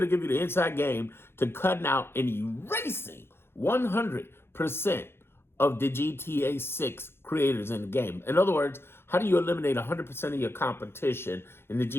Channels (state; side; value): late; right; 0.11 ms